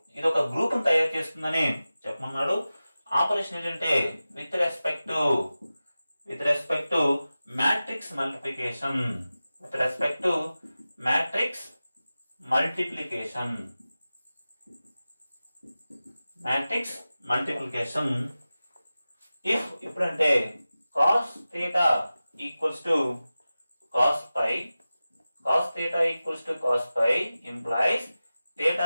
ఇది ఒక గ్రూప్ తయారు చేస్తుందని చెప్పమన్నాడు. ఆపరేషన్ ఏంటంటే with respect to matrix multiplication. ఇప్పుడంటే cos theta equals to cos pi implies theta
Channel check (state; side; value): inverted; both; correlation -0.95